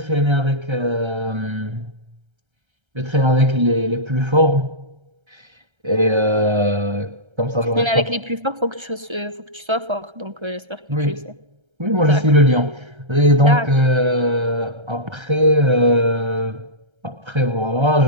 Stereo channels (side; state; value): left; late; 1.3 ms